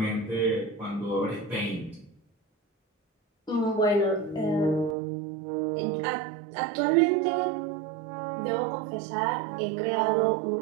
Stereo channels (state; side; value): drops out; left; at 5.0 s